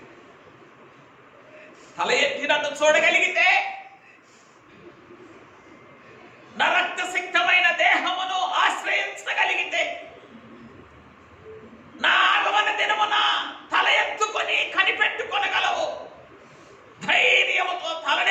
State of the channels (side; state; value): both; identical; correlation 1.00